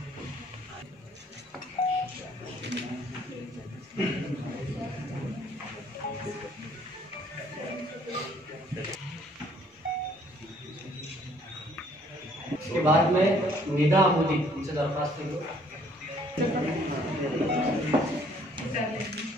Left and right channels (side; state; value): both; normal; correlation 0.61